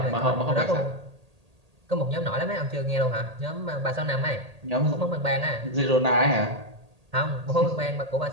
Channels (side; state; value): left; late; 1.8 ms